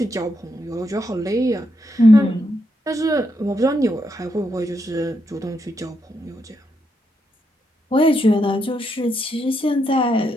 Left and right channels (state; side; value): normal; both; correlation 0.80